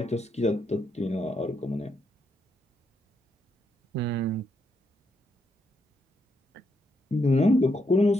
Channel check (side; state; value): both; normal; correlation 0.79